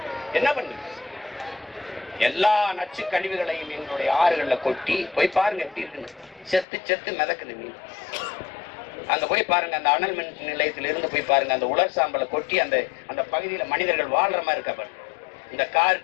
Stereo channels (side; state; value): right; drops out; at 6.7 s